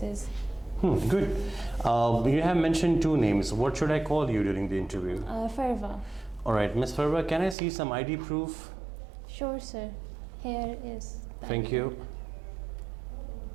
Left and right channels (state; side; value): drops out; left; at 7.6 s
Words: Good. You have mentioned two names. What should I call you during the interview? Farwa. All right, Miss Farwa, can I see some ID proof? Sure, sir. Here is. Thank you.